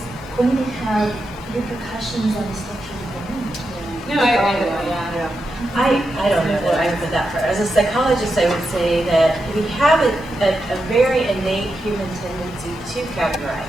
going to have repercussions on the structure of the brain. No, I agree with that. I don't know what I would put that for. As a psychologist, I would say that we have a very innate human tendency to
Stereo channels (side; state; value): both; normal; correlation 0.87